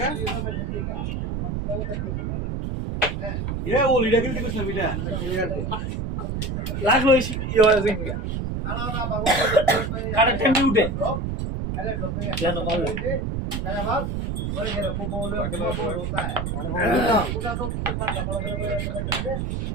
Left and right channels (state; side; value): noise; right; rumble, 2 dB below the sound